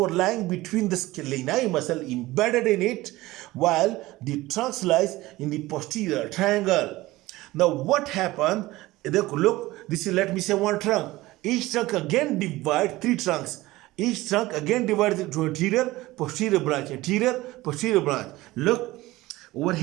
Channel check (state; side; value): quieter; left; 18.6 dB